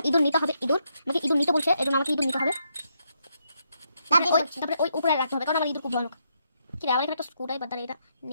ইঁদুর নিতে হবে। আমাকে ইঁদুর নিতে বলছে, এই জন্য আমাকে ইঁদুর নিতে হবে। তারপরে ওই উপরে রাখতে হবে, কারণ আমার ইঁদুর খুব ভয়ানক। কি রে, আবার এখানে একটা স্ক্রু ড্রাইভার, এটা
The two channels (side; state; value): both; inverted; correlation -0.78